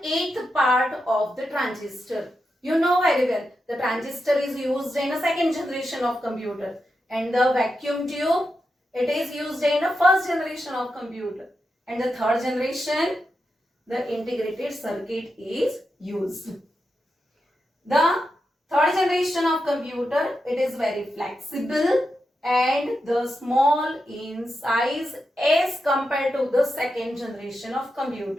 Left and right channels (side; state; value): both; normal; correlation 0.87